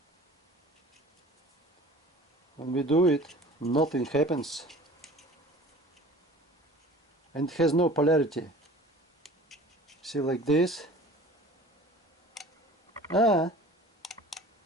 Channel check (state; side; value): normal; both; correlation 0.44